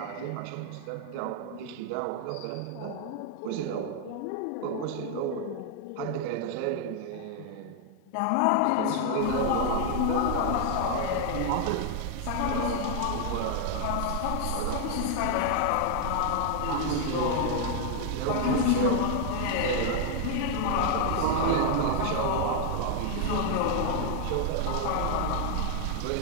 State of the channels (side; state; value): both; different; correlation 0.00